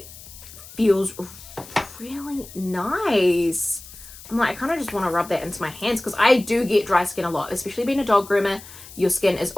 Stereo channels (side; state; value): left; noise; hiss, 17 dB below the sound